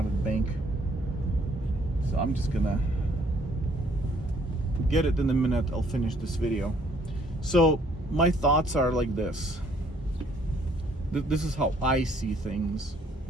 of the bank, so I'm just gonna get it in a minute. I'll finish this video. So my thoughts are like this. This is how I see things.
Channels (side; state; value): both; normal; correlation 0.64